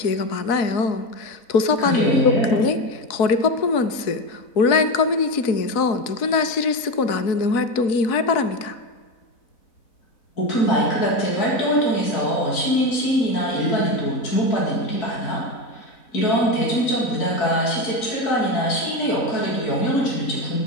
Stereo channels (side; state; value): right; late; 4.0 ms